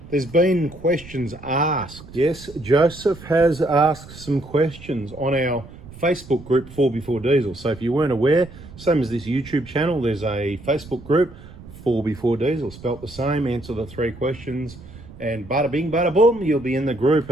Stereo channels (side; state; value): right; noise; rumble, 18 dB below the sound